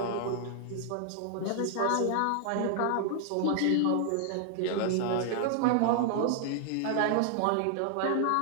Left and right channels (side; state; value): both; different; correlation 0.00